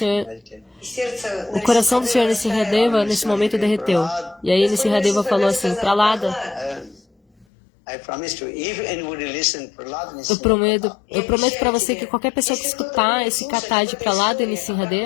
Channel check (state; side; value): drops out; right; at 7.5 s